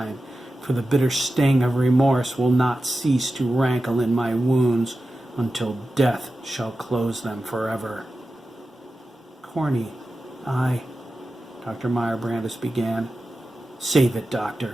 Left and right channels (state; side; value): normal; both; correlation 0.93